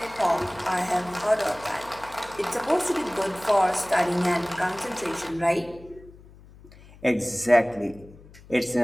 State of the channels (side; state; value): left; noise; hum, 22 dB below the sound